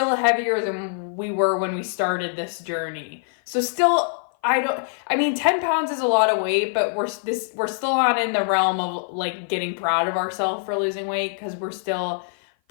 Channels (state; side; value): silent; right; 56 dB below the other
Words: heavier than we were when we started this journey. So still, 10 pounds is a lot of weight, but we're still not in the realm of like getting proud of ourselves for losing weight because we're still